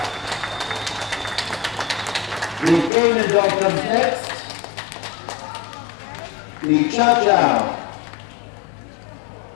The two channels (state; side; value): drops out; right; at 2.9 s